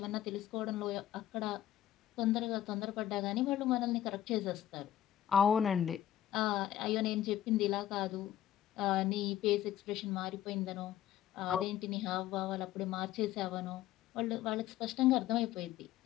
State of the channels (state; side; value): quieter; right; 12.2 dB